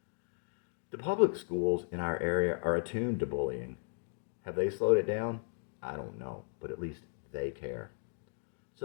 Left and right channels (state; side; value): silent; right; digital silence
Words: The public schools in our area are attuned to bullying. Have they slowed it down? I don't know, but at least they care.